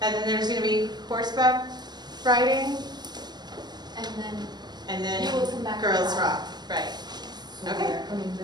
and then there's going to be horseback riding, And then and then you will come back. girls rock, right? So Okay. we are coming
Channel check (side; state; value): left; late; 0.20 ms